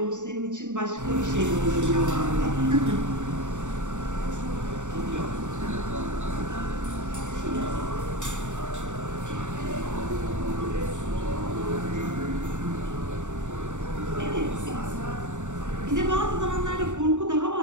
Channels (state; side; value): late; left; 0.85 ms